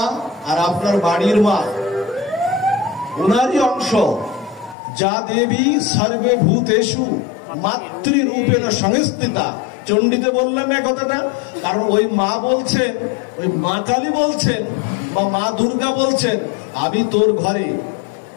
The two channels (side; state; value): right; drops out; at 4.8 s